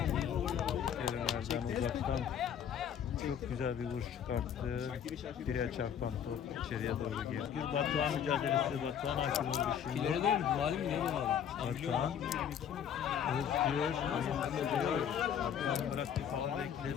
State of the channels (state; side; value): quieter; right; 8.7 dB